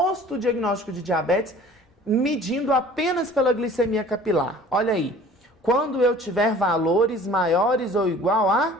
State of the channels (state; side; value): normal; both; correlation 0.48